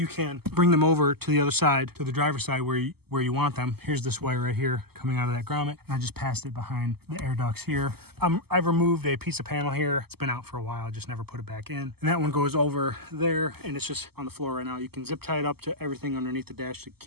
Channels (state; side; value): late; left; 0.96 ms